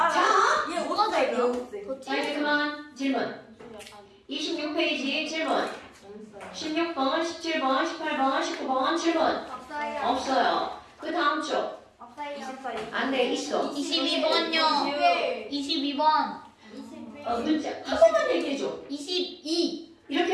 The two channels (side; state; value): both; identical; correlation 1.00